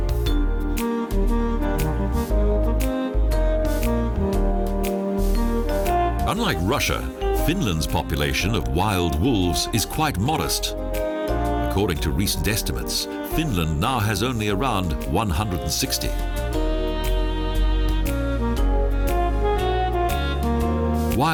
Unlike Russia, Finland's population of wild wolves is quite modest. According to recent estimates, Finland now has only around 160.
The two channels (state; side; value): identical; both; correlation 1.00